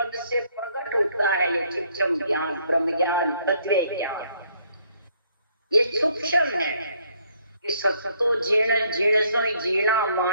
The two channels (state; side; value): inverted; both; correlation -0.67